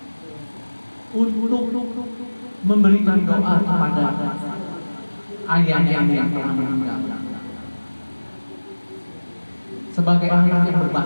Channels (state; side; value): inverted; both; correlation -1.00